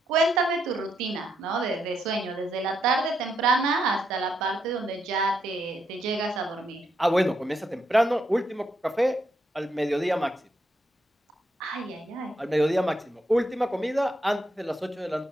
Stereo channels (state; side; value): normal; both; correlation 0.79